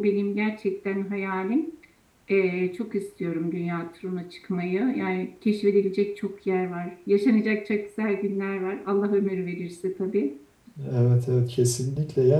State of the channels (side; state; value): both; identical; correlation 1.00